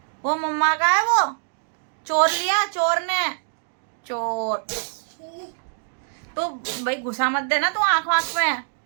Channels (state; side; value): silent; left; 63 dB below the other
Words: वो? मम्मा का है वो। चोर लिया चोर ने। चोर। तो भाई घुसा मत देना तू आंख वाँख में।